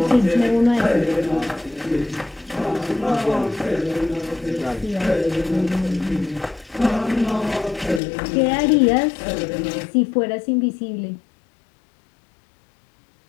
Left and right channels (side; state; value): right; drops out; at 8.0 s